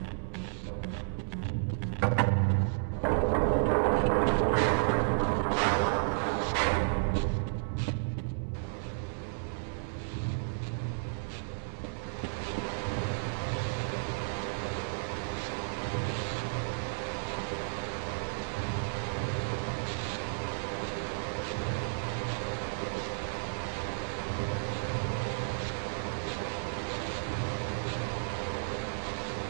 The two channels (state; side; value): silent; left; digital silence